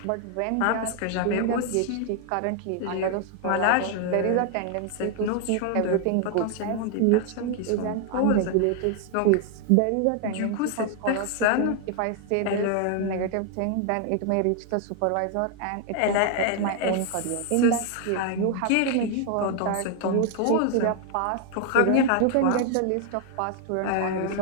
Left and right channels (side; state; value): both; different; correlation 0.00